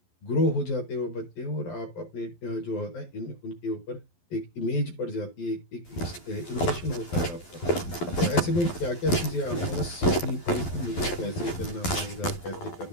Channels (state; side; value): late; right; 11 ms